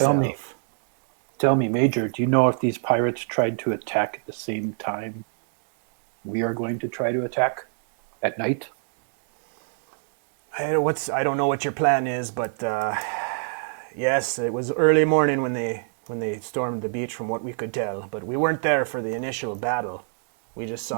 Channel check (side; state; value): left; silent; digital silence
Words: Tell me, Major, do you know if these pirates tried to attack at the same time we are going to try to attack at night? I don't know what your plan is, but yes, it was early morning when they stormed the beach, from what we could tell. But we weren't there for the initial battle. We just